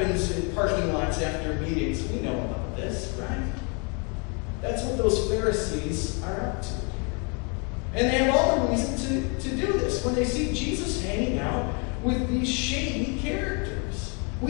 in parking lots after meetings. We know about this, right? That's what those Pharisees are up to. And they have all the reason to do this. When they see Jesus hanging out with these shady characters,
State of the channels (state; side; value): quieter; right; 34.8 dB